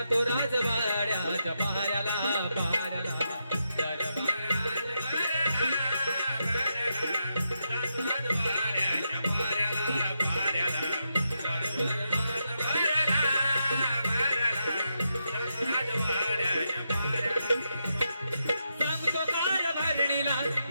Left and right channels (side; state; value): both; inverted; correlation -0.84